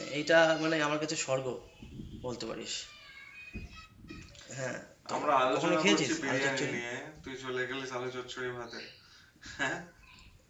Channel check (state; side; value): identical; both; correlation 1.00